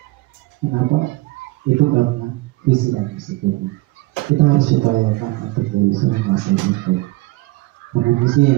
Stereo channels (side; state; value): left; quieter; 20.6 dB